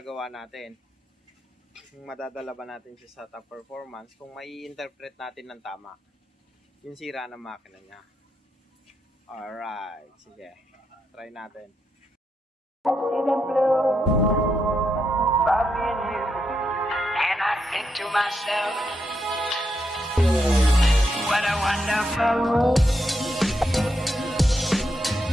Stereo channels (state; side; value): normal; both; correlation 0.82